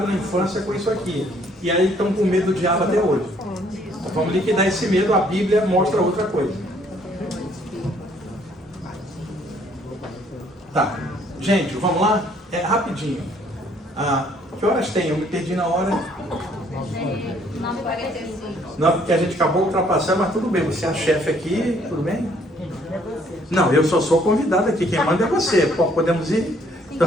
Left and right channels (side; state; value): both; normal; correlation 0.63